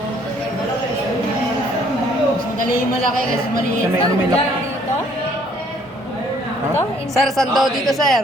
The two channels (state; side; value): normal; both; correlation 0.62